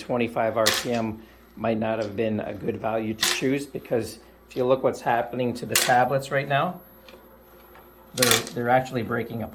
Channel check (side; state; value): both; identical; correlation 1.00